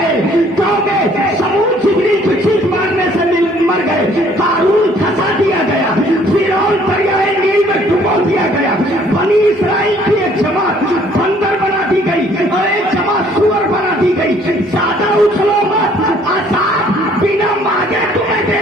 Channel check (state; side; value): normal; both; correlation 0.60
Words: कौमे समूद जिब्रील की चीख मारने से मर गए। कारून फंसा दिया गया, फिरौन दरियाए नील में डुबो दिया गया। बनी इसराइल की एक जमात बंदर बना दी गई और एक जमात सुअर बना दी गई। ज्यादा उछलो मत, अज़ाब बिना मांगे तुम्हें दे